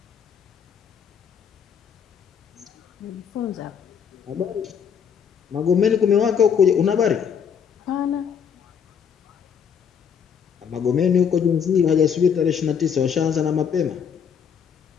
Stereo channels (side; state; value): right; quieter; 7.4 dB